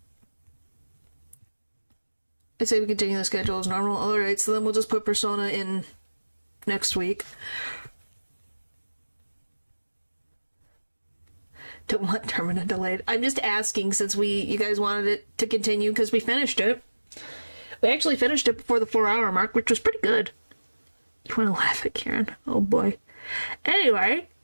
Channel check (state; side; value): inverted; both; correlation -1.00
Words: I say we continue the schedule as normal. Alright, so then we'll just put Persona in next week. Don't want Termina delayed. I'm just asking since you guys wanted it to continue because we finished it. We actually finished it before the 4-hour mark, which was pretty good. You want to laugh at Karen? Oh boy. Anyway,